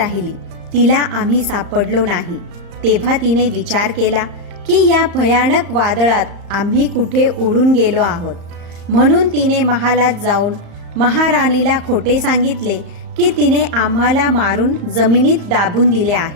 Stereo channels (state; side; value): late; left; 35 ms